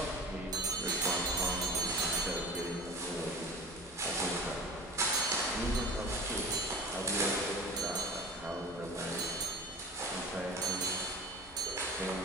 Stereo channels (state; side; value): normal; both; correlation 0.36